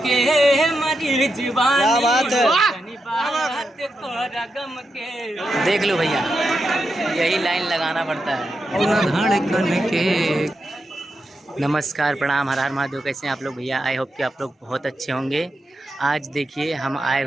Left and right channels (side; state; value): both; normal; correlation 0.87